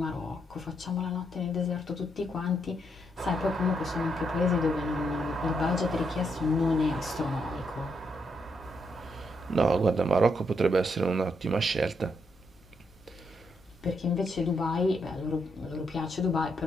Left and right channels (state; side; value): normal; both; correlation 0.78